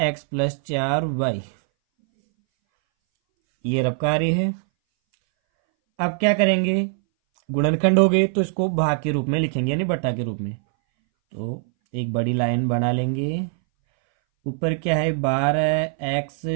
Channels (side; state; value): left; silent; 61 dB below the other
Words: प्लस 4y। ये रबकारी है। अब क्या करेंगे, गुणनखंड हो गए तो इसको भाग के रूप में लिखेंगे, यानी बटा के रूप में। तो एक बड़ी लाइन बना लेंगे। ऊपर क्या है